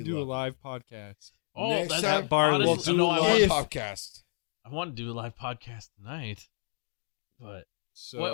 do a love live podcast. Oh, Next that's time, Barley. We'll honestly, do no, a I live want, podcast. I want to do a live podcast tonight. But So,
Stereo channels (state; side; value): silent; right; digital silence